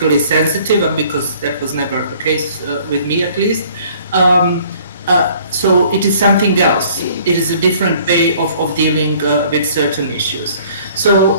sensitive, and because that was never the case with me at least. So it is something else. It is a different way of dealing with certain issues.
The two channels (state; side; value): inverted; both; correlation -0.56